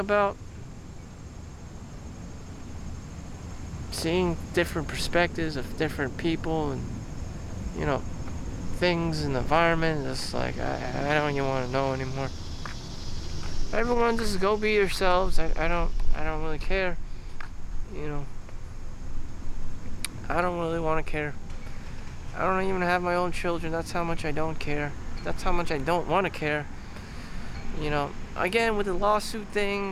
Seeing different perspectives of different people and, things in the environment. It's like, I don't even want to know anymore. Everyone just go be yourselves. I don't really care. I don't really want to care. I don't even have my own children. That's how much I don't care. That's how much I don't want to care. Again, with the lawsuit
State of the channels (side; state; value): both; identical; correlation 1.00